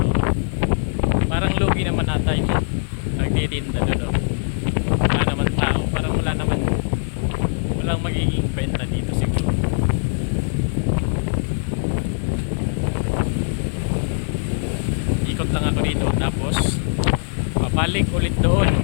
Parang lugi naman ata yung nagtitinda doon. Wala naman tao. Parang wala naman. Walang magiging benta dito siguro. Ikot lang ako dito. Tapos babalik ulit doon.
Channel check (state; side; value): silent; right; digital silence